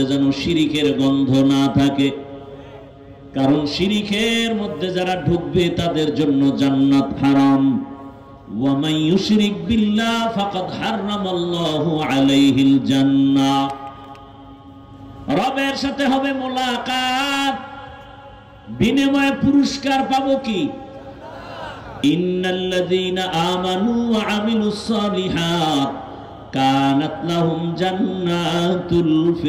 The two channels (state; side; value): identical; both; correlation 1.00